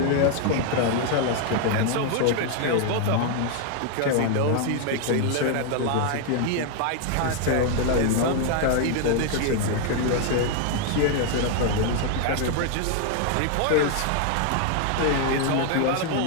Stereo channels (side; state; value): both; different; correlation 0.00